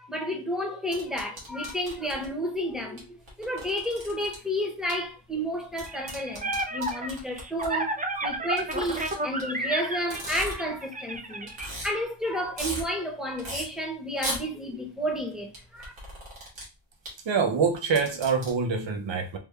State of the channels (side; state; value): both; normal; correlation 0.22